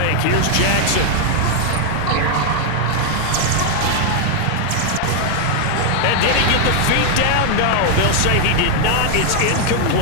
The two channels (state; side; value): different; both; correlation 0.00